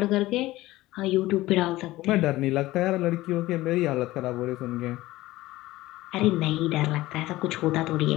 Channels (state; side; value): quieter; right; 17.6 dB